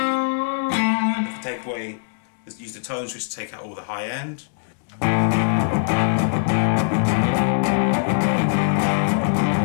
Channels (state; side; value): silent; right; digital silence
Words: If we take away, let's use the tone switch to take out all the high end.